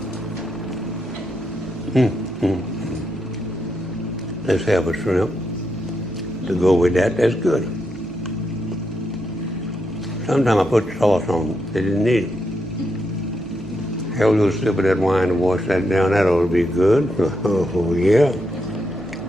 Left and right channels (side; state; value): both; normal; correlation 0.82